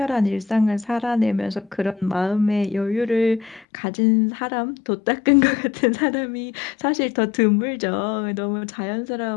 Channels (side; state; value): right; drops out; at 3.7 s